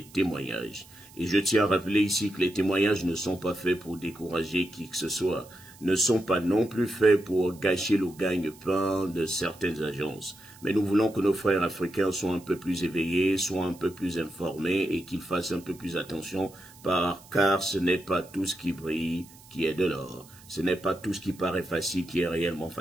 témoignages. Et je tiens à rappeler ici que les témoignages ne sont pas faits pour décourager qui que ce soit, ne sont pas non plus faits pour gâcher le gagne-pain de certaines agences. Mais nous voulons que nos frères africains soient un peu plus éveillés, soient un peu plus informés et qu'ils fassent un peu plus attention, car ce n'est pas tout ce qui brille qui est de l'or. Ce n'est pas tout ce qui paraît facile qui est réellement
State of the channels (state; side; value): noise; right; hiss, 23 dB below the sound